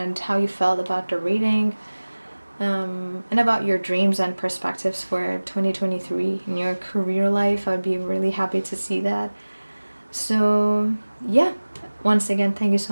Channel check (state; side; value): inverted; both; correlation -1.00